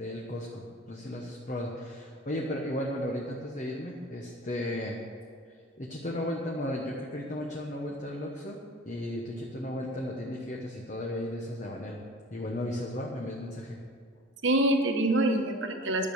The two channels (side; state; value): both; normal; correlation 0.42